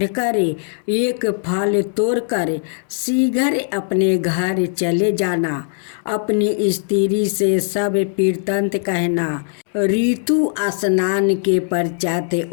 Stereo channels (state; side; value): silent; right; digital silence